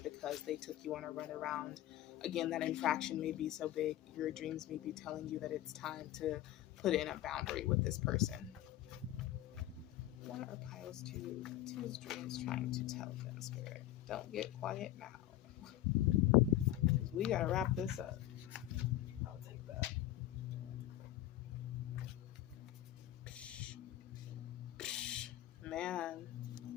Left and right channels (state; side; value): quieter; right; 13.9 dB